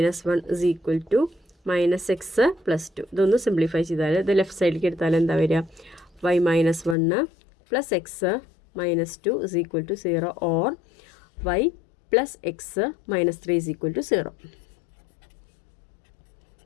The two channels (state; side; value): drops out; right; at 7.0 s